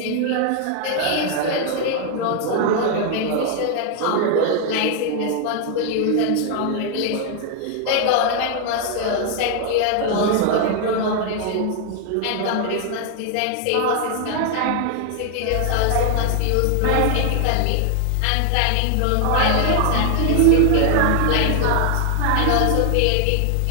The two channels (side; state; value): both; different; correlation 0.00